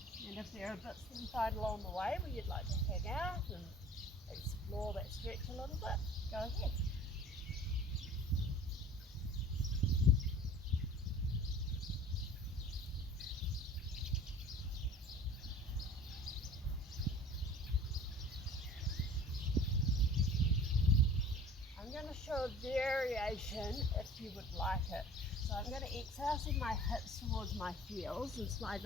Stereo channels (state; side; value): normal; both; correlation 0.45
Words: And if there are bits that you find along the way where you'd like to hang out and explore that stretch a little bit, go ahead. I'm going to show a variation if you would like it. So I'm going to exhale, send my hips towards my heels and slide